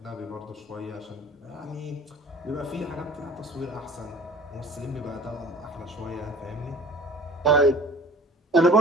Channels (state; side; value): normal; both; correlation 0.46